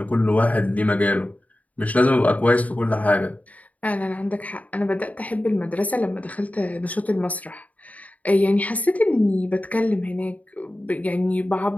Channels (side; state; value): right; late; 0.072 ms